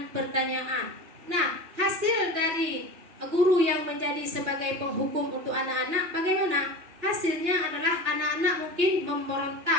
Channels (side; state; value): left; late; 2.8 ms